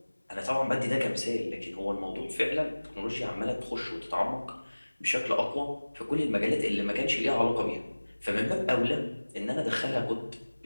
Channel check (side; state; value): both; inverted; correlation -1.00